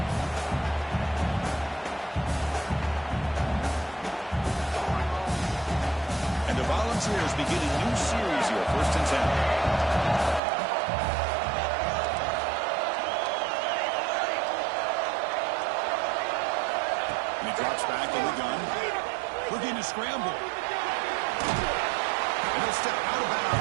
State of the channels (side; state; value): left; drops out; at 10.4 s